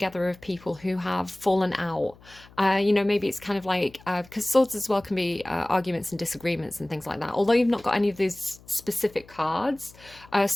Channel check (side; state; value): left; noise; hum, 24 dB below the sound